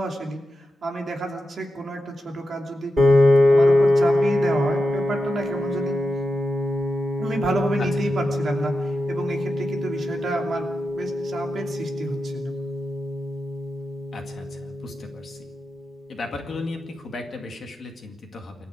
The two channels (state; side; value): normal; both; correlation 0.90